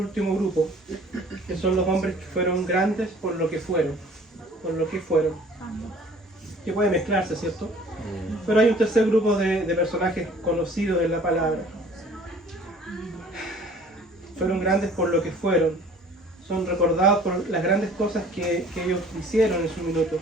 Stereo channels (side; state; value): both; normal; correlation 0.52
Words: grupo, que son los hombres que fueron grandes por lo que fueron. Por lo que fueron. Que puede mezclarse, ¿cierto? Pero hay un tercer grupo de personajes conocidos en la palabra. Fueron grandes por lo que fueron. Son recordados por las grandes cosas que ellos hicieron en su minuto,